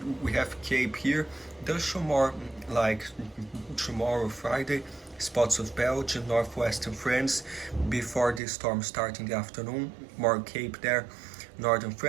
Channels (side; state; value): left; drops out; at 8.4 s